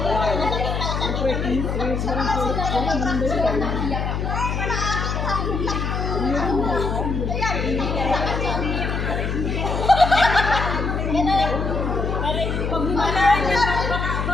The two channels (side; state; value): left; noise; hum, 1 dB below the sound